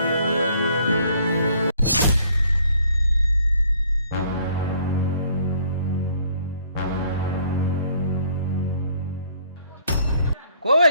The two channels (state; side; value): inverted; both; correlation -0.62